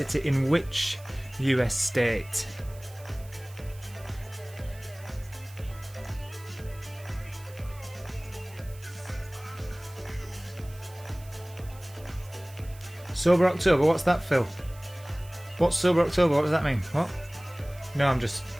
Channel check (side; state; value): right; noise; hiss, 22 dB below the sound